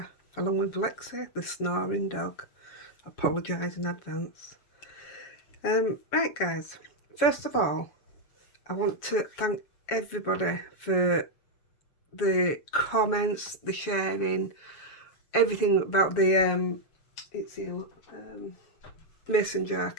along with Lexi, the snoring dog. Apologise in advance. Right guys, first of all, I want to thank everybody for the comments, the sharing, everything about the mason jar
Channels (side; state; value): right; late; 7.2 ms